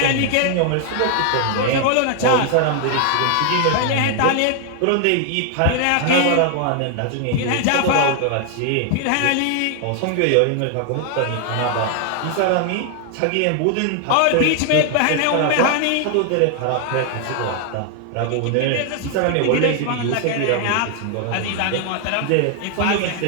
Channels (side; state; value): both; different; correlation 0.00